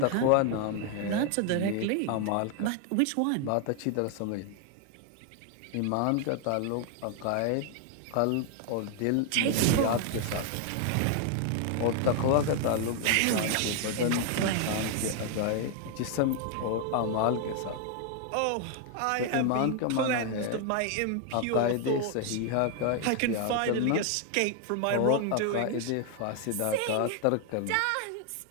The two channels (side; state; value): both; different; correlation 0.00